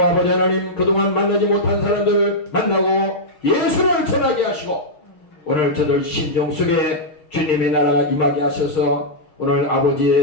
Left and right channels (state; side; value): late; right; 6.5 ms